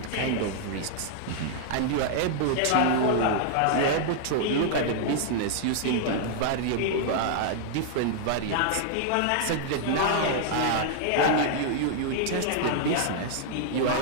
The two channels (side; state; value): both; different; correlation -0.01